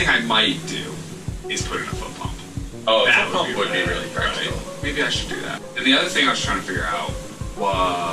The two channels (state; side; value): identical; both; correlation 1.00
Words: I might do is put in a foot pump. Oh, that a foot pump would be really practical. Right? Maybe I should do that. And the other thing I was trying to figure out